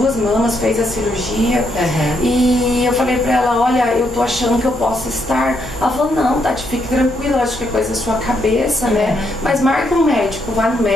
mamas, fez a cirurgia. E eu falei pra ela, olha, eu tô achando que eu posso estar. Ela falou, não, Tati, fique tranquila, acho que é coisa da sua cabeça, né? Mas marque um médico, vá no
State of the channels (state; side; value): normal; both; correlation 0.76